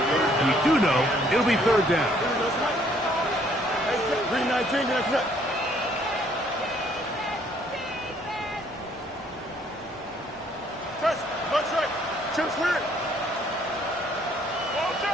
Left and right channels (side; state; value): both; normal; correlation 0.64